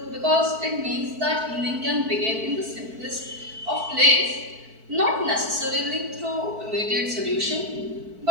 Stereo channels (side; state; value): left; late; 4.5 ms